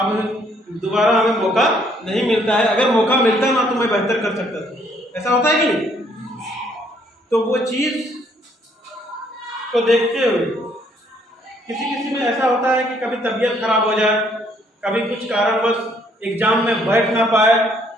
दोबारा हमें मौका नहीं मिलता है। अगर मौका मिलता ना तो मैं बेहतर कर सकता था। ऐसा होता है कि नहीं? तो वो चीज को देखते हुए किसी किसी में ऐसा होता है कि कभी तबीयत खराब हो जाए, कभी कुछ कारणवश एग्जाम में बैठ ना पाए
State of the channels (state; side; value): normal; both; correlation 0.66